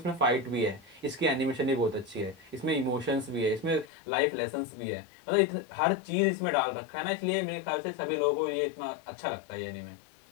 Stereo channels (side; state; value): right; drops out; at 3.9 s